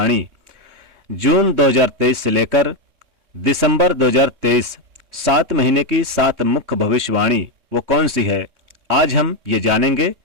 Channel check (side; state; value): left; late; 3.6 ms